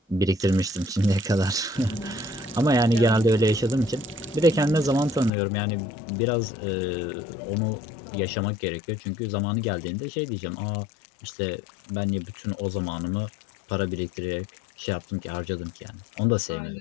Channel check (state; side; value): drops out; right; at 5.3 s